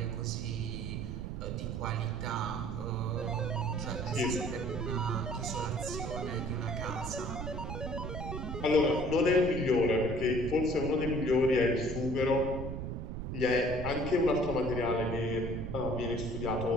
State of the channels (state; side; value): noise; right; rumble, 5 dB below the sound